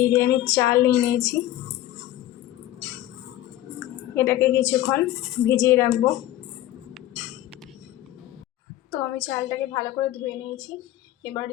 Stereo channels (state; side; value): quieter; right; 14.2 dB